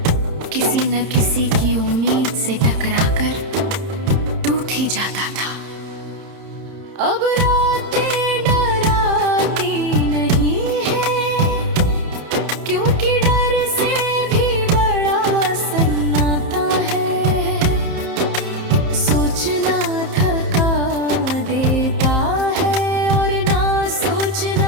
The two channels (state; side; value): late; left; 30 ms